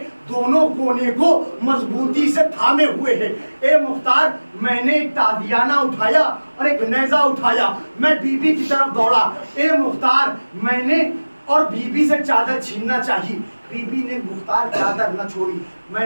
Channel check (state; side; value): inverted; both; correlation -1.00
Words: दोनों कोने को मजबूती से थामे हुए है। ए मुख्तार मैंने एक तादियाना उठाया और एक नेजा उठाया, मैं बीबी की तरफ दौड़ा। ए मुख्तार मैंने और बीबी से चादर छीनना चाहिए, बीबी ने मुख्तार चादर न छोड़ी।